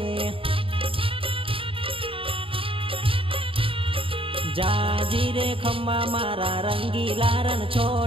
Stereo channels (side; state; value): left; late; 0.26 ms